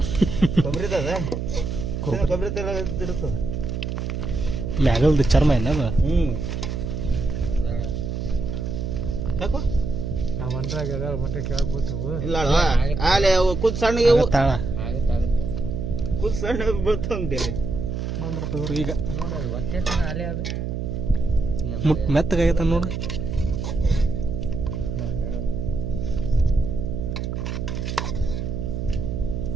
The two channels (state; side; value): noise; right; hum, 3 dB below the sound